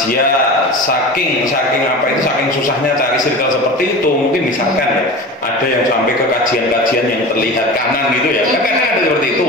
saking susahnya cari circle seperti itu, mungkin misalkan ya ada yang sampai ke kajian-kajian yang terlihat kanan gitu ya, kan ada seperti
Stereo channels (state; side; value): normal; both; correlation 0.32